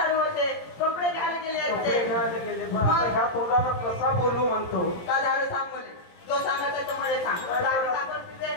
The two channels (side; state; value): right; late; 17 ms